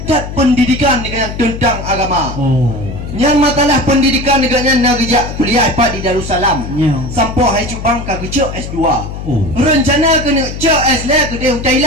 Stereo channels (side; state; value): left; noise; hum, 8 dB below the sound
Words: pendidikan dengan tentang agama. Oh. Yang masalah pendidikan neganya nak kerja kuliah dapat di Darussalam. Sampai hai cubang ka kerja S2. Rencana kena cek S le ke dia